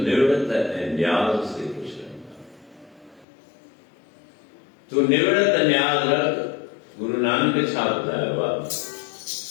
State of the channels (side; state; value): right; drops out; at 3.2 s